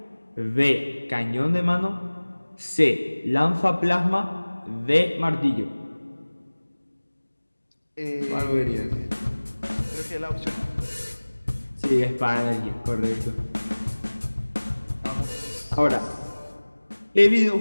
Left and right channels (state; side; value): inverted; both; correlation -1.00